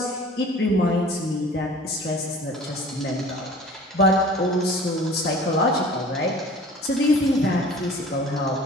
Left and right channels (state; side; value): normal; both; correlation 0.45